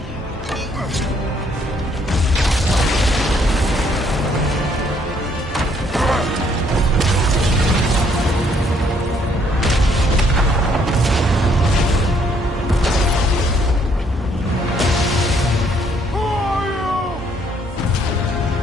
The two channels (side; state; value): both; normal; correlation 0.67